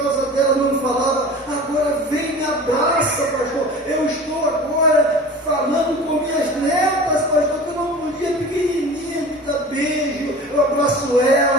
causa dela, não falava. Agora vem, me abraça, pastor. Eu estou agora falando com minhas netas, pastor, que eu não podia, pequenininha, me dar beijo. Eu abraço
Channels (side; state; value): both; normal; correlation 0.38